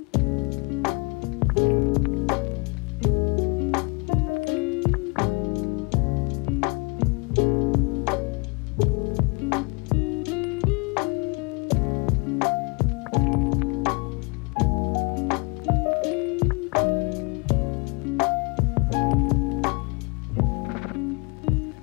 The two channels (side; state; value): right; quieter; 29.9 dB